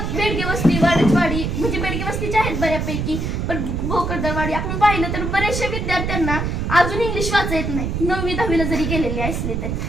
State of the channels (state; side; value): noise; right; rumble, 2 dB below the sound